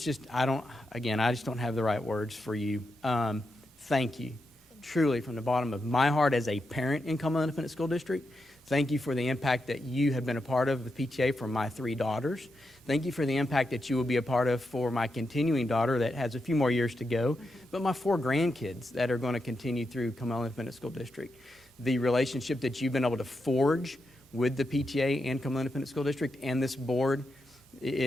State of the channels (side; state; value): both; normal; correlation 0.86